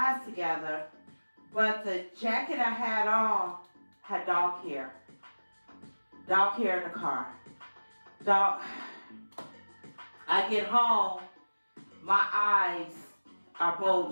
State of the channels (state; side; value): inverted; both; correlation -1.00